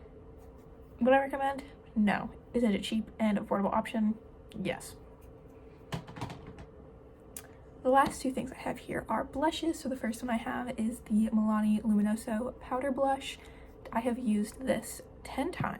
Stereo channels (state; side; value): identical; both; correlation 1.00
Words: Would I recommend? No. Is it a cheap and affordable option? Yes. The last 2 things I have here are blushes. So the first one I have is the Milani Luminoso Powder Blush. I have used this 10